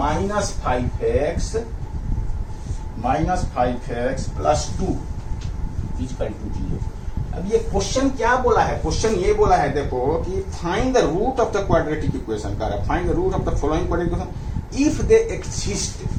5x plus 2 equal to 0। अब ये क्वेश्चन क्या बोला है, क्वेश्चन ये बोला है देखो कि find the root of the quadratic equation का, find the root of the following quadratic equation if they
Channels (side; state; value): both; identical; correlation 1.00